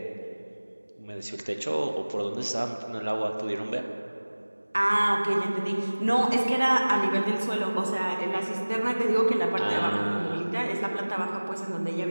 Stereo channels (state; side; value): inverted; both; correlation -1.00